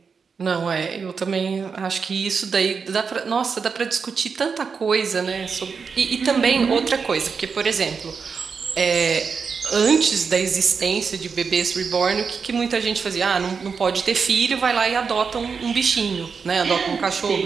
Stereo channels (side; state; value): left; quieter; 5.6 dB